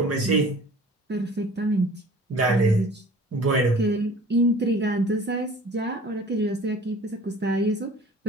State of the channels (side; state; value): both; normal; correlation 0.47